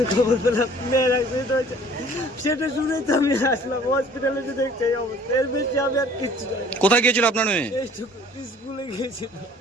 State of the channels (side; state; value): both; normal; correlation 0.52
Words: খবর পেলাম মেয়ের অ্যাক্সিডেন্ট হয়েছে। সেটা শুনেই তো আমি আসলাম হসপিটালে, যে দেখছি এই অবস্থা। এর বেশি আমি আর কিচ্ছু জানি না। কোথায় গিয়েছিল আপনার মেয়ে? এইটুকু, স্কুলে গিয়েছিল।